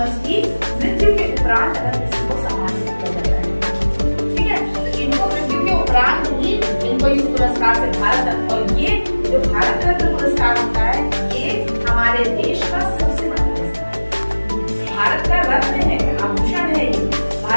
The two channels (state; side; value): inverted; both; correlation -1.00